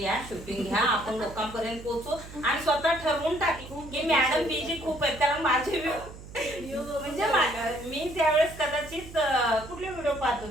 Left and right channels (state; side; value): noise; right; hum, 15 dB below the sound